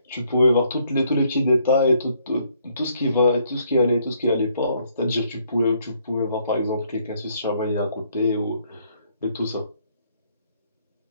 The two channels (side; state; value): both; inverted; correlation -0.69